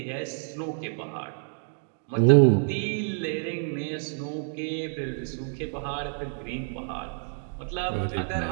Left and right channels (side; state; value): left; silent; 58 dB below the other